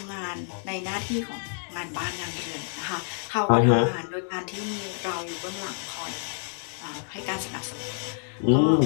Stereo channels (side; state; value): right; silent; 60 dB below the other